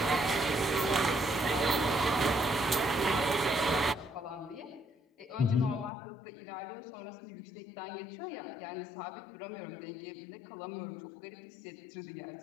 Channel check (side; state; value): right; drops out; at 5.9 s